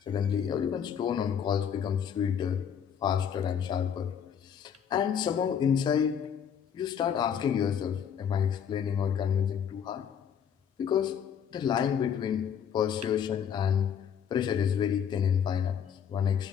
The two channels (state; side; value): quieter; right; 8.1 dB